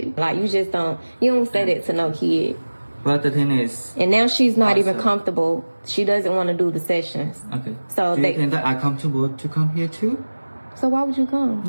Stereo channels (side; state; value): both; inverted; correlation -1.00